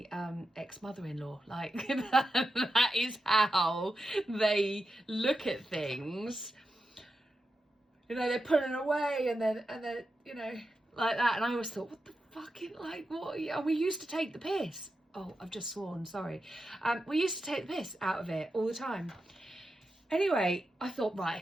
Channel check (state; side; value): normal; both; correlation 0.89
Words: ex-mother-in-law. Like that is how they look at things. you know, they're pulling away, and then, you know, like that. And I always thought, what the fucking, like, what? And we used to take the piss. Oh, I've just sworn, sorry. We used to take the piss out of it all the time. Anyway, I thought,